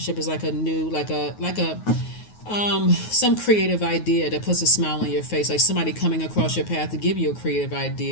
is like a new, like a some creative idea that puts a smile on your face. Like somebody coming across your path to give you a creative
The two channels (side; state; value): right; late; 9.4 ms